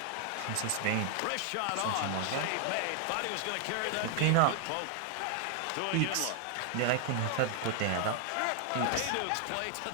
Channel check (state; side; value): different; both; correlation 0.00